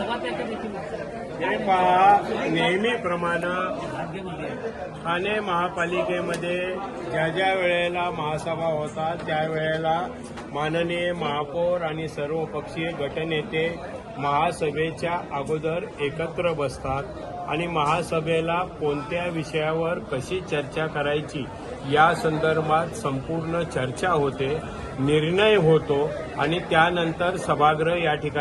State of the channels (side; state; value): both; identical; correlation 1.00